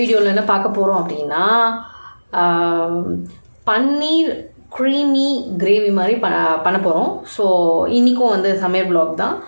என்ன பார்க்க போகிறோம் அப்படின்னா, பன்னீர் க்ரீமி கிரேவி மாதிரி பண்ண போகிறோம். ஸோ இன்றைக்கும் சமையல் ப்ளாக் தான்.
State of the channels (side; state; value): both; inverted; correlation -1.00